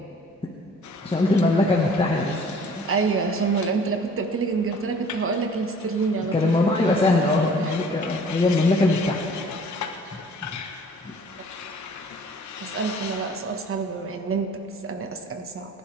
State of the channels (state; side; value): normal; both; correlation 0.52